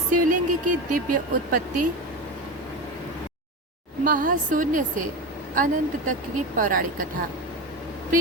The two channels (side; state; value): both; normal; correlation 0.22